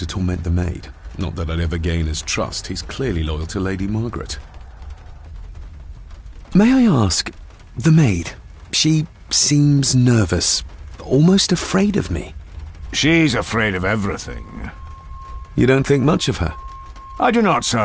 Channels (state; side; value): identical; both; correlation 1.00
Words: torment the maid. Not that I'd ever gain his trust. He's clearly loyal to Lady Margaret. May I ask, the maid, she seems nervous, almost afraid of me. She's afraid of everything. You don't think much of her? I do not,